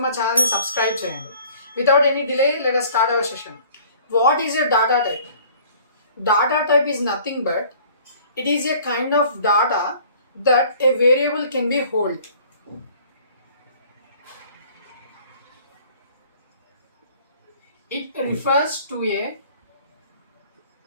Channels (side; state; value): both; inverted; correlation -0.52